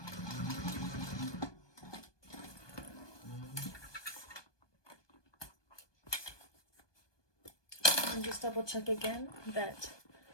And just double check again that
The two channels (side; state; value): right; late; 1.2 ms